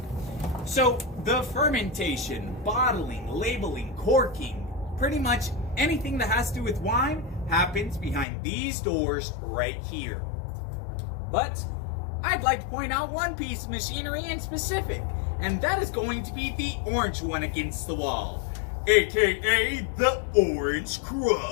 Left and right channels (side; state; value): right; drops out; at 8.2 s